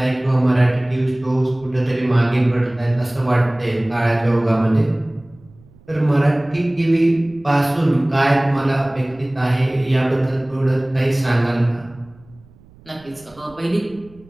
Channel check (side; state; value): right; noise; rumble, 26 dB below the sound